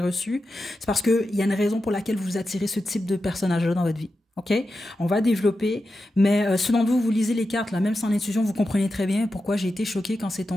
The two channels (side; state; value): both; normal; correlation 0.90